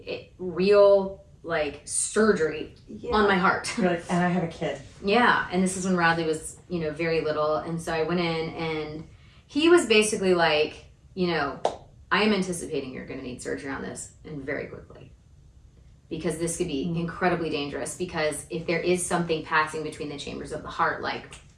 real like surgery on my heart. You're like, and I have a kid. Yeah, and this is when Radley was, very little, and so I went in, and he was basically like, I am anticipating you're going to need surgery on this, and very quickly, because this could be incredibly dangerous, because if there is something passing between the chambers of the heart, like,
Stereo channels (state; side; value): identical; both; correlation 1.00